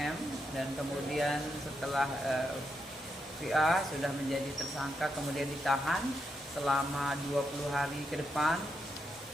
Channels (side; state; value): both; normal; correlation 0.82